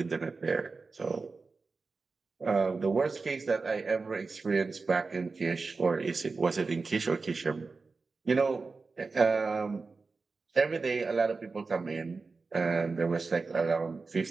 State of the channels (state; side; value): quieter; left; 4.2 dB